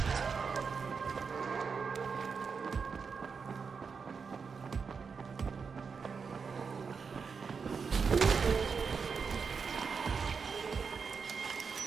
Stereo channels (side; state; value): left; quieter; 5.5 dB